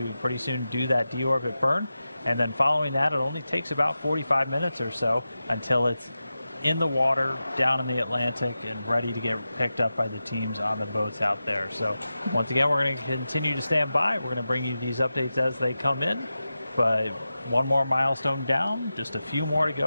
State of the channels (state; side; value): inverted; both; correlation -0.93